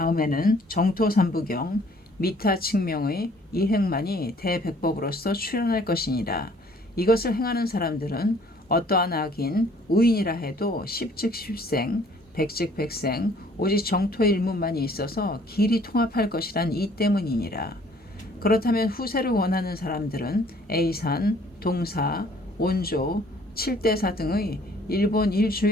정토삼부경 미타 측명의 이행만이 대백법으로서 출현할 것이니라. 이것을 행하는 사람들은 어떠한 악인 우인이라 해도 십즉 십생 백즉 백생 오직 정토 일문만이 있어서 길이 통합할 것이란 이 때문이니라. 그렇다면 후세를 원하는 사람들은 A산, 동사, 온조, 칠대사 등의 일본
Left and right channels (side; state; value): both; normal; correlation 0.58